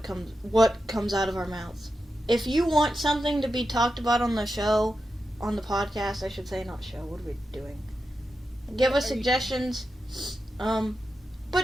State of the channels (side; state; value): both; normal; correlation 0.89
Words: comes out of our mouths. If you want something to be talked about on the show, on the podcast, I should say, not show. What are we doing? Give us suggestions.